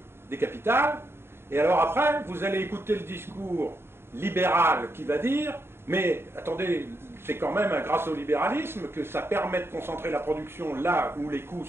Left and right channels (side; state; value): left; late; 0.11 ms